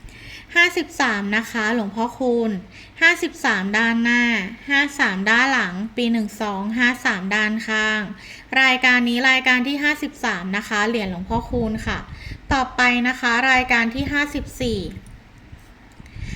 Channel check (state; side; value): identical; both; correlation 1.00